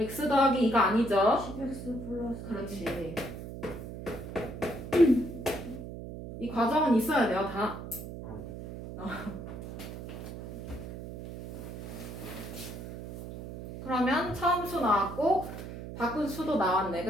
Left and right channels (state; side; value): noise; right; hum, 10 dB below the sound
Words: 더하기 2가 아니죠? 10X 플러스. 그렇지. 이 과정은 있어야 돼요, 다. 그러면 처음 수 나왔고 바꾼 수도 나왔네,